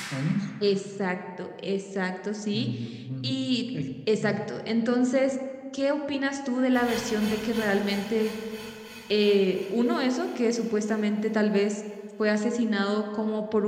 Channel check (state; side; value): identical; both; correlation 1.00